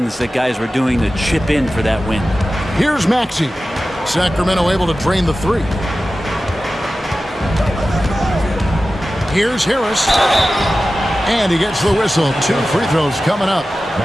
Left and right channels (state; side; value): normal; both; correlation 0.95